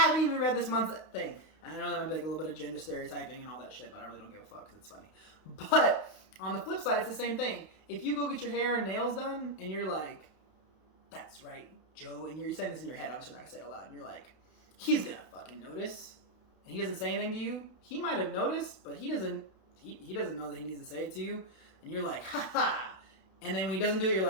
even read this month's thing. And I know that might be like a little bit of gender stereotyping and all that shit, but I really don't give a fuck because it's funny. But on the flip side, it's the same thing. If you go get your hair and nails done and you're like, that's right, Joe, and you're saying this in your head, obviously not gonna say it out loud, and you're like, he's gonna fucking notice, and he doesn't say anything to you. He might have noticed, but he doesn't know that he needs to say it to you, and you're like, ha, and then when he doesn't do it, you're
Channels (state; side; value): late; right; 32 ms